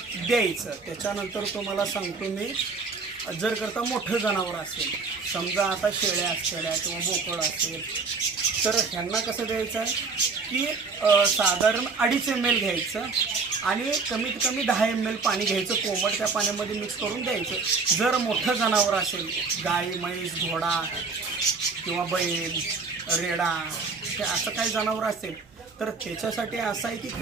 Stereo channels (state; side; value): quieter; left; 4.5 dB